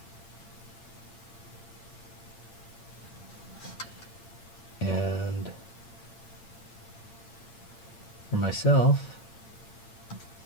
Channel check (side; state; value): right; late; 8.8 ms